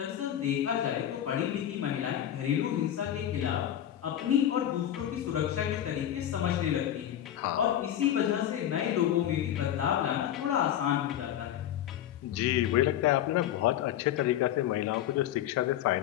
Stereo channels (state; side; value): quieter; right; 11.3 dB